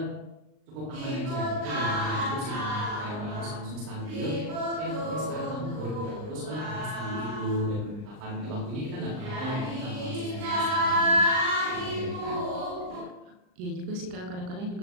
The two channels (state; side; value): late; left; 39 ms